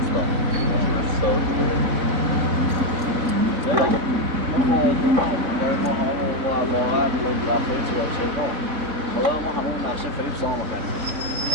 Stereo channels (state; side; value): late; left; 4.1 ms